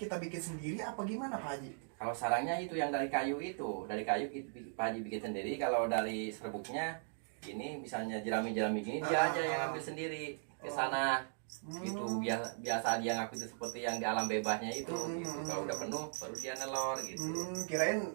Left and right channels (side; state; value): left; silent; digital silence